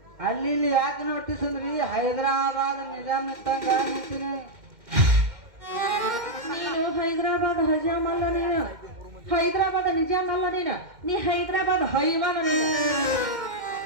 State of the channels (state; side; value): late; left; 2.1 ms